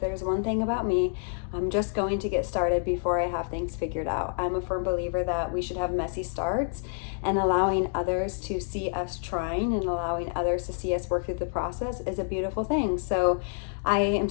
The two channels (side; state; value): right; silent; digital silence